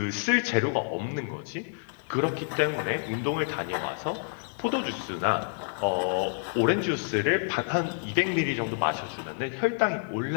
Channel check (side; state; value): right; silent; digital silence